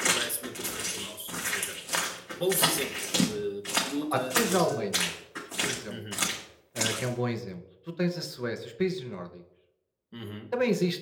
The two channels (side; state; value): both; identical; correlation 1.00